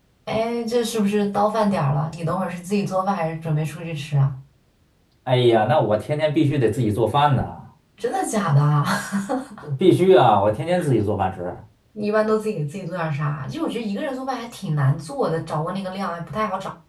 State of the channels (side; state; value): both; identical; correlation 1.00